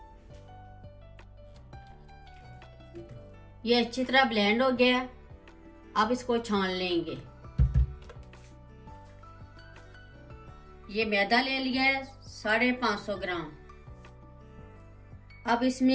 ये अच्छी तरह ब्लेंड हो गया। अब इसको छान लेंगे। ये मैदा ले लिया है 550 ग्राम। अब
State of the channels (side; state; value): both; identical; correlation 1.00